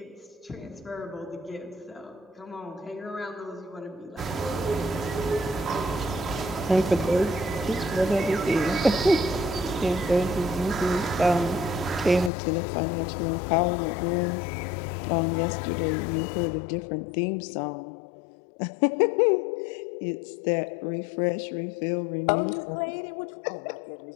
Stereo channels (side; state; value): right; drops out; at 12.3 s